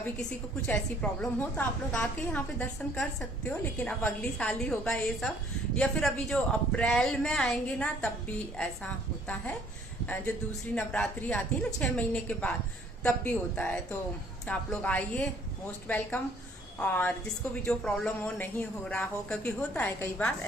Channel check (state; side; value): normal; both; correlation 0.60